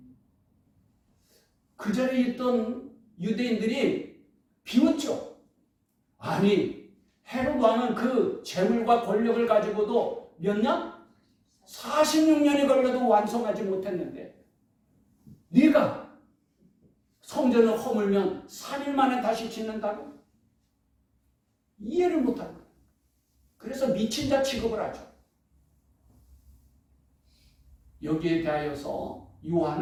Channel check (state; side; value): identical; both; correlation 1.00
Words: 그 자리에 있던 유대인들이 비웃죠. 아니, 헤롯 왕은 그 재물과 권력을 가지고도 몇 년? 46년이 걸려도 완성하지 못했는데 네가 성전을 허물면 3일 만에 다시 짓는다고? 이해를 못하는 거예요. 그래서 미친 자 취급을 하죠. 여기에 대하여서